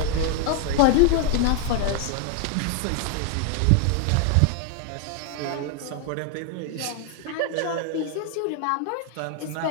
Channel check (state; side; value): different; both; correlation 0.00